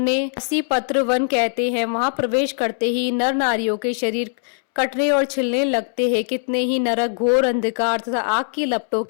असी पत्र वन कहते हैं। वहां प्रवेश करते ही नर नारियों के शरीर कटने और छिलने लगते हैं। कितने ही नरक घोर अंधकार तथा आग की लपटों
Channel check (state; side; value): silent; right; 65 dB below the other